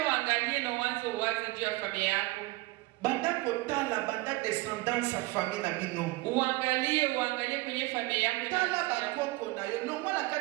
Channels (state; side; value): quieter; left; 21.3 dB